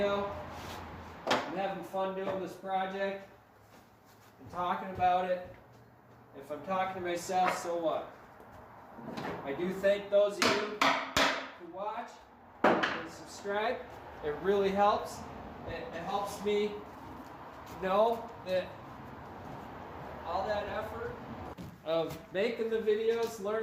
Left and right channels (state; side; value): identical; both; correlation 1.00